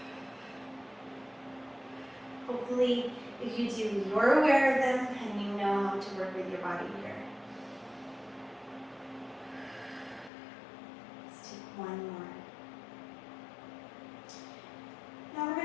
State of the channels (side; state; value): right; drops out; at 10.3 s